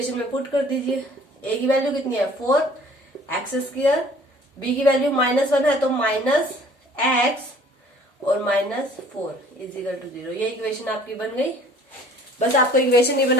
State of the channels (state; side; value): normal; both; correlation 0.53